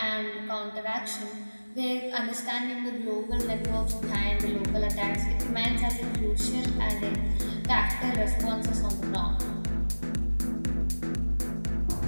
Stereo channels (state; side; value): inverted; both; correlation -1.00